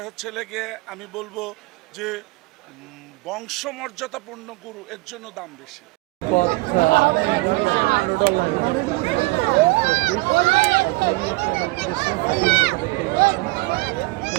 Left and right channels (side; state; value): left; quieter; 23.1 dB